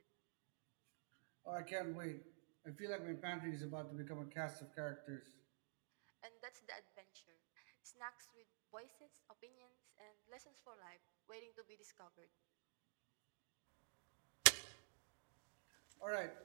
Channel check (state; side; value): silent; left; digital silence